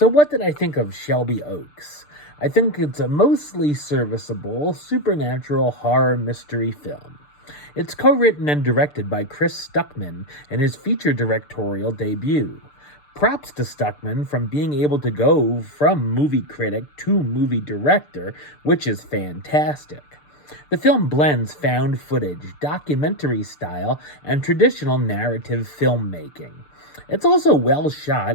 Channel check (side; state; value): right; late; 6.8 ms